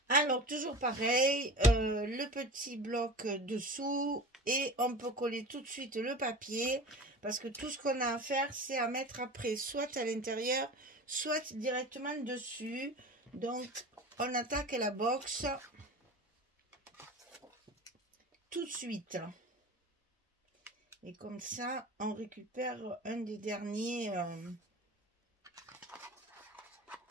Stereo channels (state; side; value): normal; both; correlation 0.34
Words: Alors toujours pareil, le petit bloc dessous et on peut coller tout de suite le papier. Parce que tout ce qu'on a à faire, c'est à mettre après, soit à l'intérieur, soit directement dessus. Donc, on attaque la box tout de suite. Et comme ça, on récupère un des derniers, un